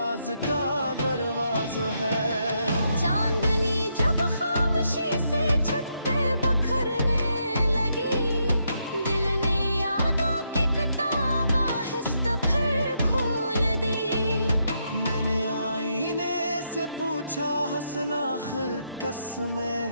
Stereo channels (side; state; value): both; inverted; correlation -0.79